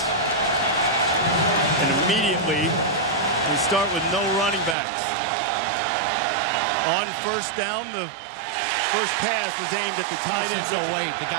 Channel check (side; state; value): left; drops out; at 4.8 s